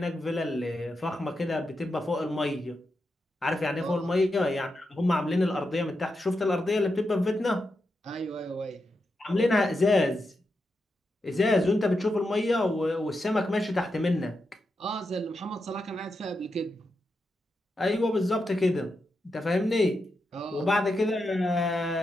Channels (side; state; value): both; normal; correlation 0.86